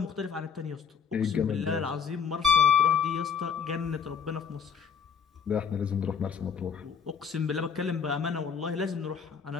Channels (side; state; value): right; quieter; 6.9 dB